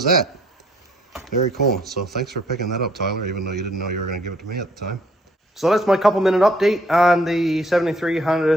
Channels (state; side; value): normal; both; correlation 0.64